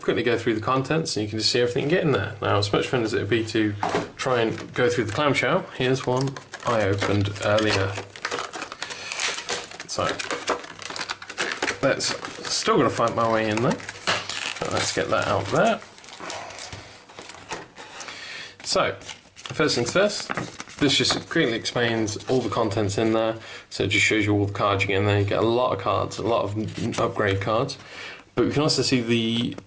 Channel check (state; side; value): identical; both; correlation 1.00